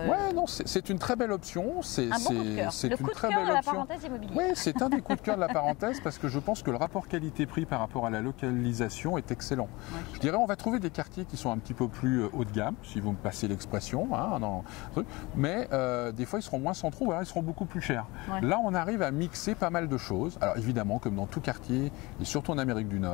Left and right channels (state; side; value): quieter; right; 23.5 dB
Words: Ouais, non, c'est une très belle option. C'est un bon coup de cœur. Le coup de cœur de la parenthèse immobilière. Oui, c'est un des coups de cœur de la parenthèse parce que je pense que le rapport qualité-prix par rapport à la localisation est excellent. Ouais, je dirais on va trouver des quartiers qui sont un petit peu plus haut de gamme, si vous me passez l'expression, mais des fois ils seront moins centraux, ou alors ils seront beaucoup plus chers. Ouais. Là, on arrive à mixer pas mal de choses. Alors évidemment, comme dans tout quartier, et surtout en Amérique du